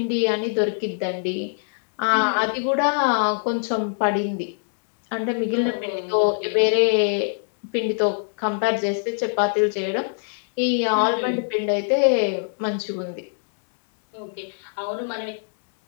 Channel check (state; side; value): silent; right; digital silence